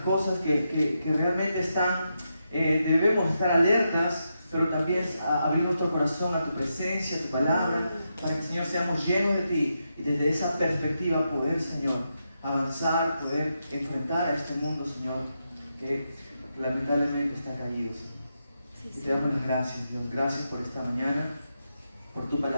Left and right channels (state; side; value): inverted; both; correlation -0.85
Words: cosas que realmente están, debemos estar alertas, pero también abrir nuestro corazón a tu presencia, a tu palabra, para que, Señor, seamos llenos de ti y desde esa perspectiva poder, Señor, avanzar, poder enfrentar a este mundo, Señor, que lamentablemente está caído, Señor. Y te damos las gracias, Dios. Gracias por esta mañana, por tu